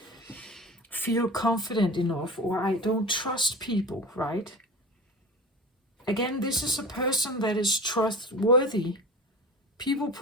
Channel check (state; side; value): normal; both; correlation 0.33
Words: feel confident enough, or I don't trust people, right? Again, this is a person that is trustworthy. People